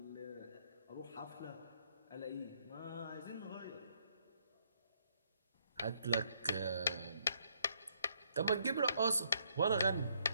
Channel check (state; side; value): inverted; both; correlation -0.71